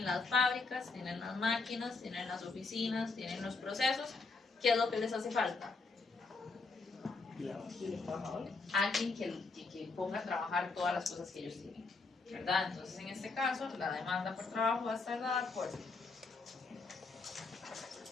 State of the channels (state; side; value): quieter; right; 4.0 dB